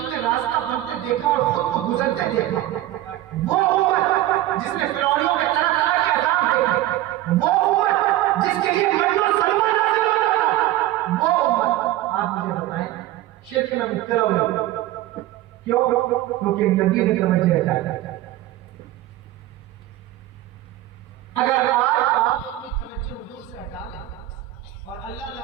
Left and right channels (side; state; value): left; quieter; 15.0 dB